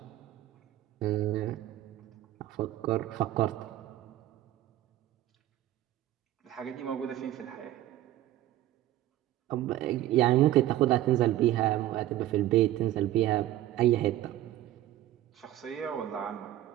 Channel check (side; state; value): left; quieter; 14.1 dB